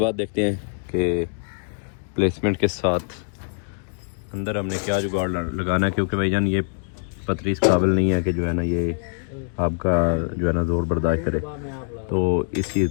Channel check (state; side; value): silent; right; digital silence